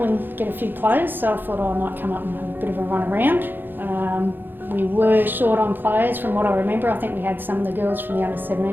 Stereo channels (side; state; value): left; late; 0.095 ms